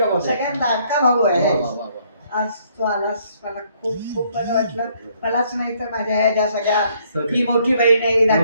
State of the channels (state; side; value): inverted; both; correlation -0.66